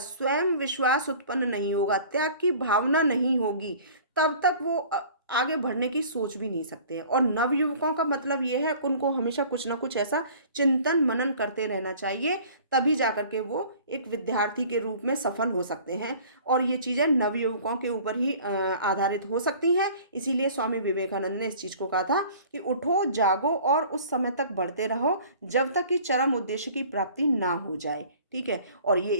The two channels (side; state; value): both; inverted; correlation -0.48